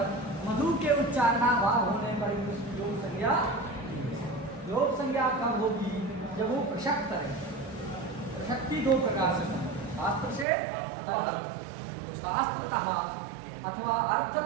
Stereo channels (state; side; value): drops out; left; at 10.5 s